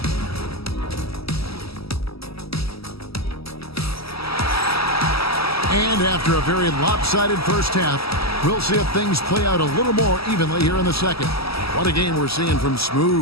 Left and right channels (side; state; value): right; late; 0.76 ms